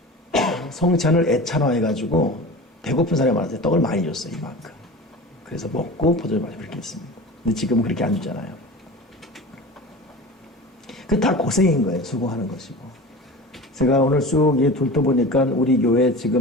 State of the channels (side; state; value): both; normal; correlation 0.34